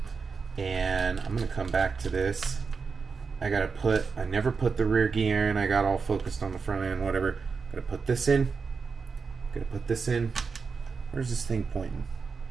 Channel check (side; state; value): left; quieter; 5.1 dB